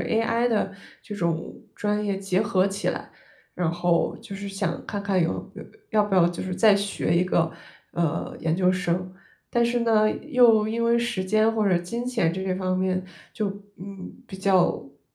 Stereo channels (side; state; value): both; identical; correlation 1.00